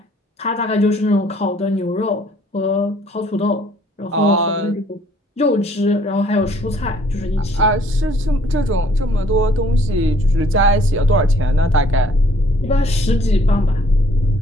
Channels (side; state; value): both; normal; correlation 0.61